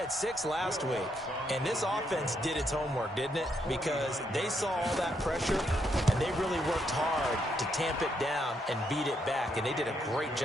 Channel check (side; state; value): both; normal; correlation 0.76